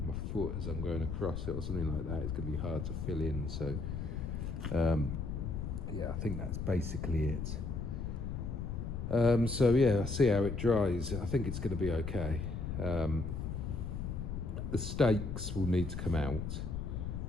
my foot as I'm going across it or something like that, it's going to be hard to fill in. So yeah, I think that's basically it. So yeah, I'll see how it dries. I think it's going to be okay. The stakes will need to come out.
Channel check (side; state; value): left; noise; rumble, 4 dB below the sound